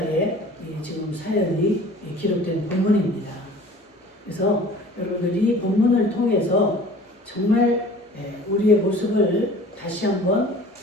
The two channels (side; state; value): both; normal; correlation 0.46